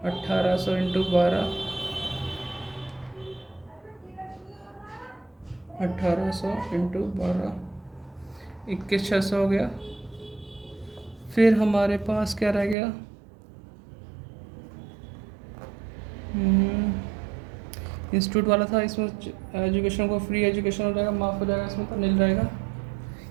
1800 इंटू 12, 1800 इंटू 12, 21,600 हो गया। फिर हमारे पास क्या रह गया, इंस्टीट्यूट वाला था। इसमें एजुकेशन को फ्री एजुकेशन हो जाएगा, माफ़ हो जाएगा, इसमें तो नील रहेगा,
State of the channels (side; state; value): left; drops out; at 12.8 s